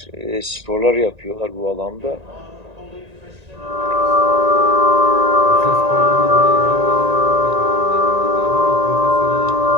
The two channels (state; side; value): late; left; 1.9 ms